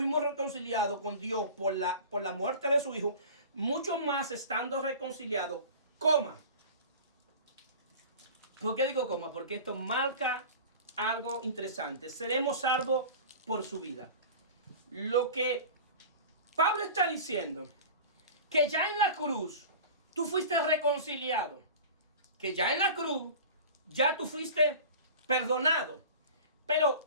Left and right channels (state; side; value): inverted; both; correlation -0.37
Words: reconciliados con Dios por la muerte de su Hijo, mucho más estando reconciliados, coma. ¿Por qué digo coma? Porque esto marca algo interesante. Seremos salvos por su vida. Lo que Pablo está diciendo, que ya en la cruz tú fuiste reconciliado, que ya en la cruz ya tú fuiste perdonado, pero